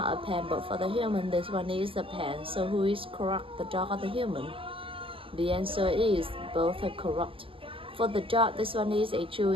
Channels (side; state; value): left; late; 0.26 ms